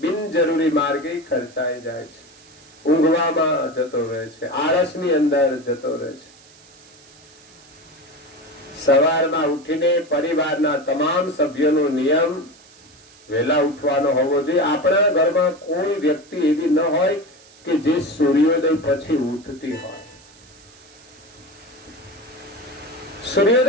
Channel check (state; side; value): noise; right; hiss, 25 dB below the sound